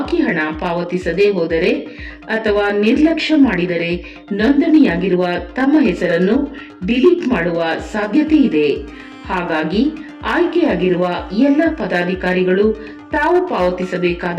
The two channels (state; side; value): identical; both; correlation 1.00